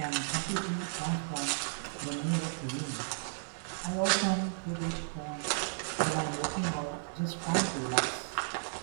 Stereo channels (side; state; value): left; silent; digital silence